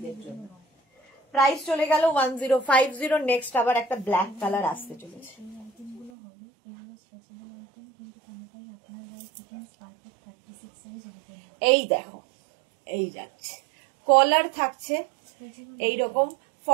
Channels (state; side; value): drops out; left; at 6.1 s